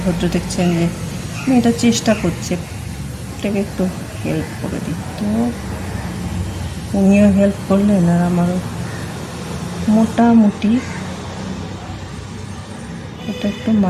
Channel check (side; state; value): both; identical; correlation 1.00